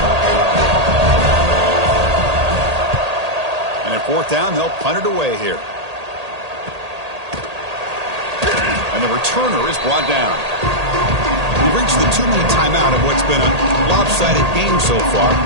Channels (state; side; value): late; left; 1.8 ms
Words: brought down. They'll punt it away here. And the returner is brought down. We've reached the 2-minute timeout of what's been a lopsided game so far.